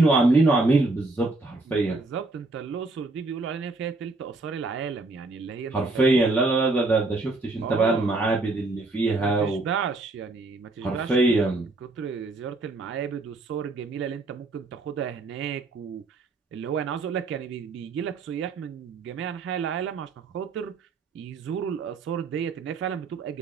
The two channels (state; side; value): quieter; left; 3.3 dB